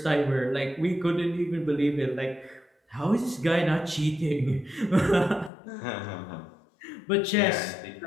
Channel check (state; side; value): drops out; right; at 5.5 s